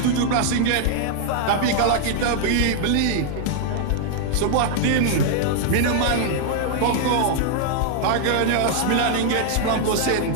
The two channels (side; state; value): both; different; correlation 0.00